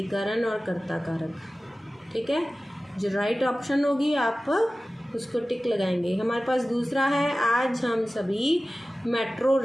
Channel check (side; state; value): both; normal; correlation 0.96